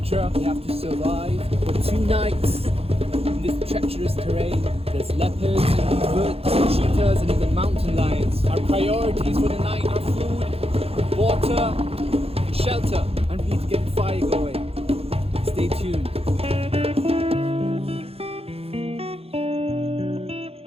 We have to survive for 2 nights in this treacherous terrain. There's leopards, birds, cheetahs, and even mountain lions. Our priorities for the night are food, water, and shelter. And we need to get the fire going. Stay tuned.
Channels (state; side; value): late; left; 0.29 ms